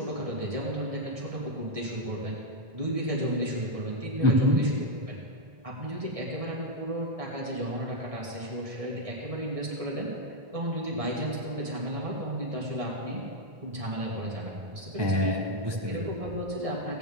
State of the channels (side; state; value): left; late; 1.6 ms